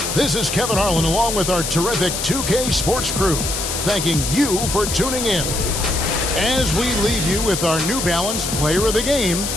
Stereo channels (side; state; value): left; noise; hiss, 3 dB below the sound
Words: this is Kevin Harlan along with our terrific 2K Sports crew, thanking you for tuning in. As we leave you with our New Balance player of the game,